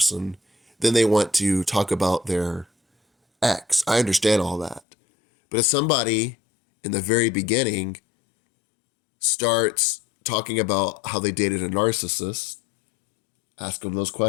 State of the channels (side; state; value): right; drops out; at 4.8 s